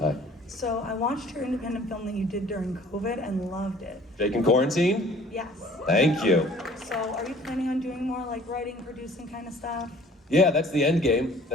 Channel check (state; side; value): normal; both; correlation 0.52